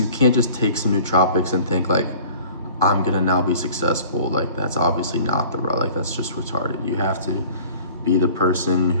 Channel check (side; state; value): both; inverted; correlation -0.47